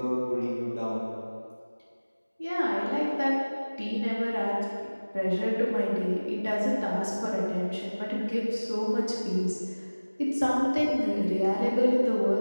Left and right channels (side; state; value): both; inverted; correlation -1.00